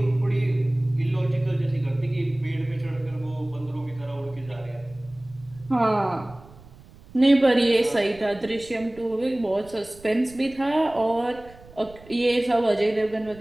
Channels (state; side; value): noise; right; rumble, 22 dB below the sound